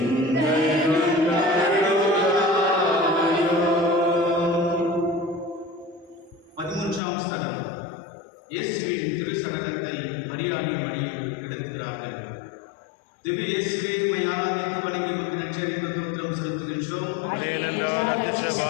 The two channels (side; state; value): right; drops out; at 7.0 s